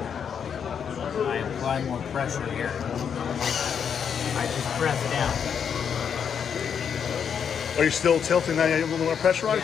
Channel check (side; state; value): right; quieter; 7.4 dB